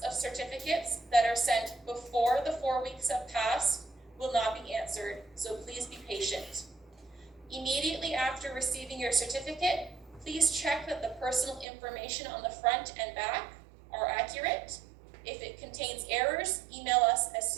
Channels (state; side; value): drops out; left; at 11.7 s